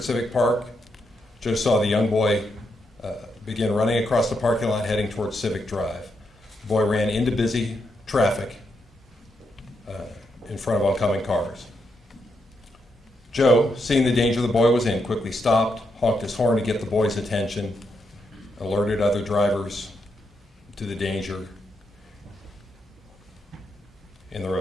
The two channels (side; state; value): both; normal; correlation 0.82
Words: Civic Park, Joe saw the young boy begin running across the parking lot heading towards Civic Drive. The boy ran into busy traffic in front of oncoming cars. Joe, seeing the danger the boy was in, quickly stopped, honked his horn to get the boy's attention, alerted other drivers to the danger in the